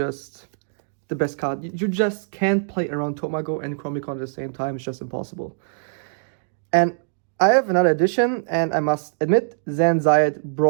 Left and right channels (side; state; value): left; silent; digital silence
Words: the best card. You just can't play around Tomago and Chromicon at the same time. It's just impossible. And I have another addition, and I must admit, Zan Zayed